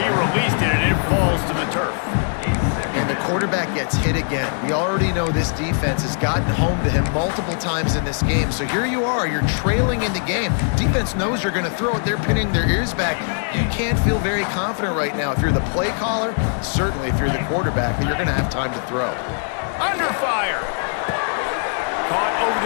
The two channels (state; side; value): silent; right; 61 dB below the other